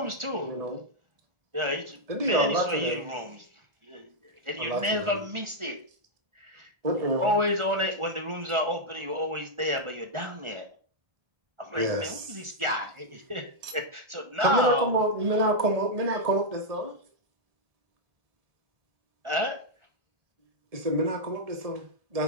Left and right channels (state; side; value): late; left; 1.4 ms